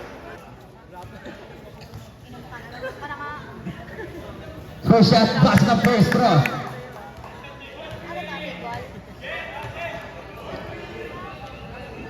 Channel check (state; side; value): identical; both; correlation 1.00